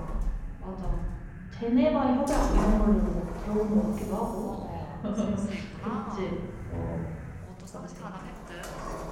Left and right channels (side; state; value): both; identical; correlation 1.00